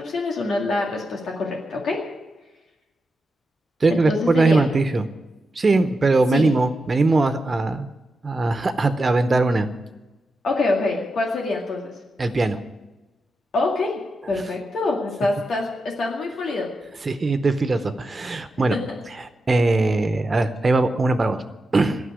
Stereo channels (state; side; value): normal; both; correlation 0.88